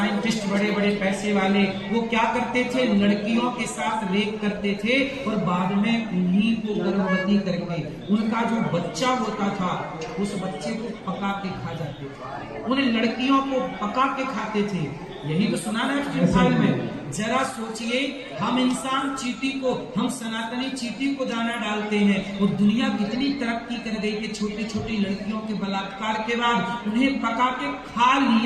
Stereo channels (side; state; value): both; identical; correlation 1.00